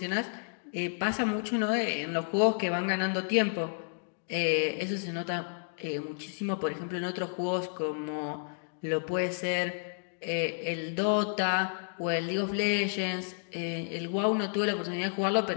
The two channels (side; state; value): right; silent; digital silence